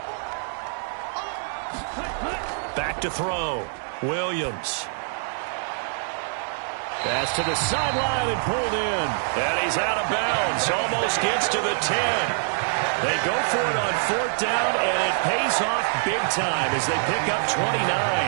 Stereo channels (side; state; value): left; silent; digital silence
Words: Back to throw. Williams. Pass to the sideline and pulled in. And he's out of bounds. Almost gets to the 10. They go for it on 4th down, and it pays off big time as they pick up 29.